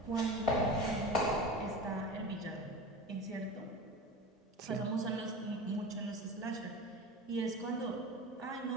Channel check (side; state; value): both; normal; correlation 0.31